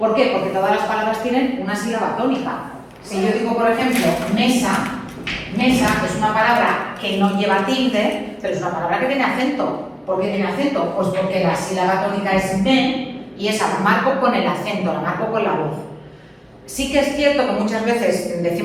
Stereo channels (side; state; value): both; identical; correlation 1.00